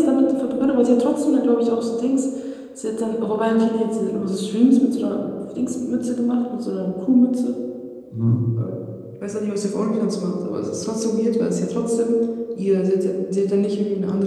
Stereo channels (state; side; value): identical; both; correlation 1.00